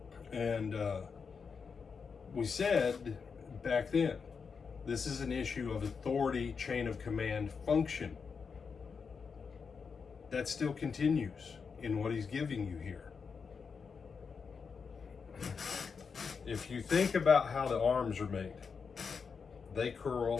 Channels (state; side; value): quieter; right; 5.6 dB